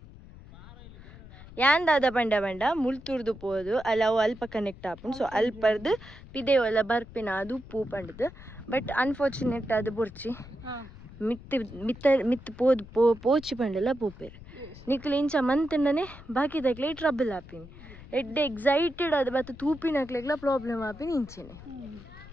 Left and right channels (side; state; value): left; noise; rumble, 18 dB below the sound